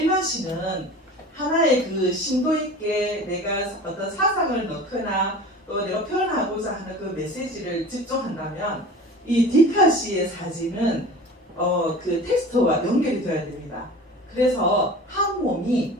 시는 하나의 심도 있게 내가 어떤 사상을 넣거나 또 내가 표현하고자 하는 그 메시지를 집중한다면 이 디카시의 사진은 텍스트와 연결이 되어야 됩니다. 그래서 한 몸이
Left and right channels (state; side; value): normal; both; correlation 0.38